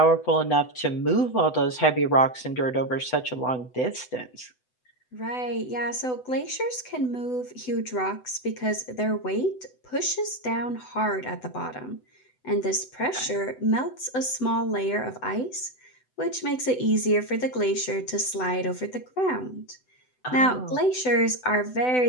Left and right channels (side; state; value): right; late; 8.0 ms